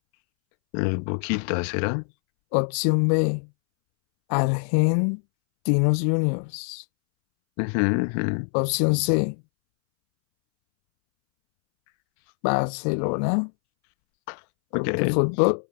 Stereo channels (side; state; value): right; silent; 63 dB below the other